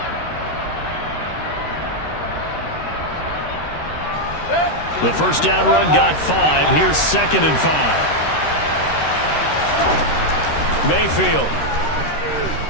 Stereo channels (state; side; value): late; right; 13 ms